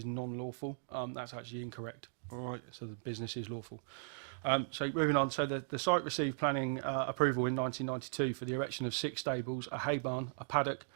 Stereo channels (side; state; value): left; silent; digital silence